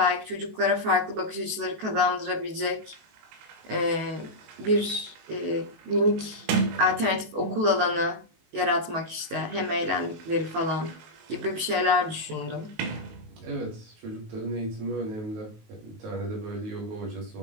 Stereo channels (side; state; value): left; late; 19 ms